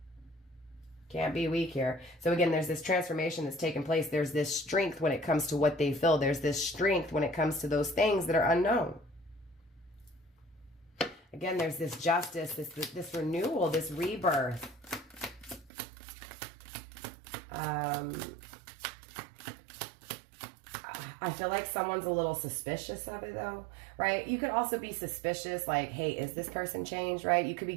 Can't be weak here. So again, there's this transformation that's taken place. There's this strength when it comes to what they feel. There's this strength when it comes to those things that are unknown. Again, there's this justice, this renewal, this rebirth. I feel like someone's a little suspicious of it though, right? You could also be suspicious, like, hey, is this person changed, right? You could be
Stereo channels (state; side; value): drops out; left; at 15.7 s